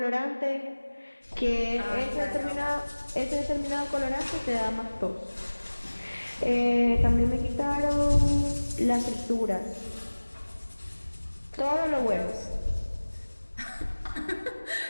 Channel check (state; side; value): inverted; both; correlation -1.00